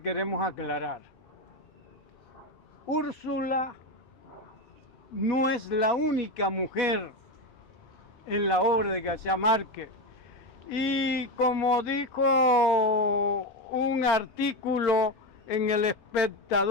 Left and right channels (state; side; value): normal; both; correlation 0.15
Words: queremos aclarar. Úrsula no es la única mujer en la obra de García Márquez. Y como dijo un artículo en El